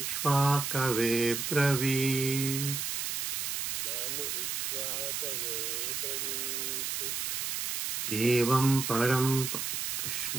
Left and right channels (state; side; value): noise; right; hiss, 1 dB below the sound